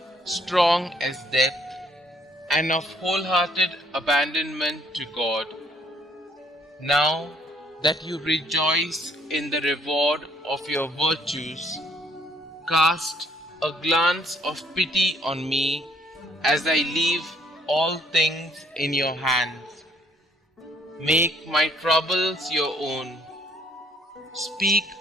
strong as death, and of wholehearted abandonment to God. Now that you rejoice in the reward of your virtues, cast a glance of pity on me as I leave all things in your hands. Make my troubles your own. Speak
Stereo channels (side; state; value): both; normal; correlation 0.64